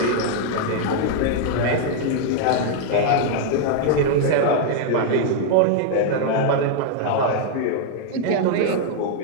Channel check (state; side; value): different; both; correlation 0.00